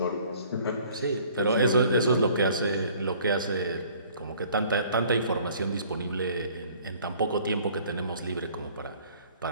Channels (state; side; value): inverted; both; correlation -0.54